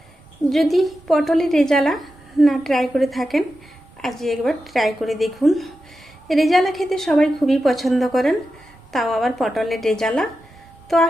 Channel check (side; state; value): both; normal; correlation 0.90